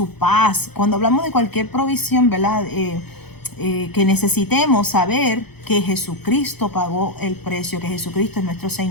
paz, cuando hablamos de cualquier provisión, ¿verdad?, que necesitemos, saber que Jesucristo pagó el precio, que Jesucristo es nuestro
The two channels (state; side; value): late; right; 0.97 ms